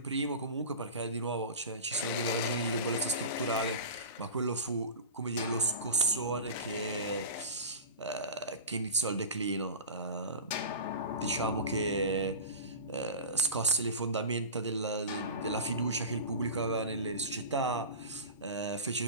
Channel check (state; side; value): inverted; both; correlation -0.32